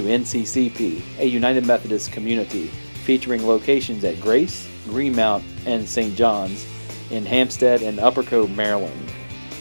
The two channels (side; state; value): both; inverted; correlation -1.00